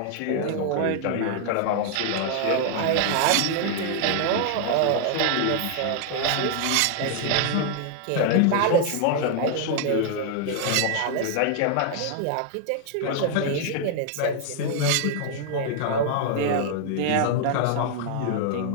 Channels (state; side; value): different; both; correlation 0.00